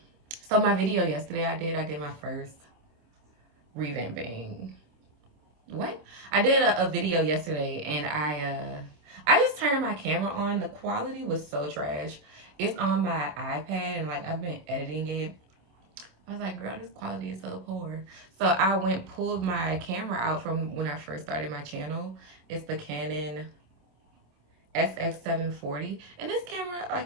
so my video yesterday I did my first revamping. What? I did a video yesterday and I just turned my camera on. The quality was so trash. It's on my iPad and like I've been editing it. I was like, girl, this quality is so poor. So I pulled my camera out from when I first started my channel. It's the Canon SX740. And this camera,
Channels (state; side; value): late; left; 26 ms